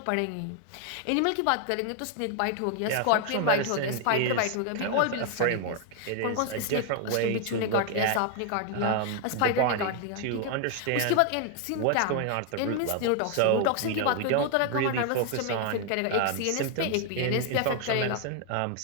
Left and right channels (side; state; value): both; different; correlation 0.00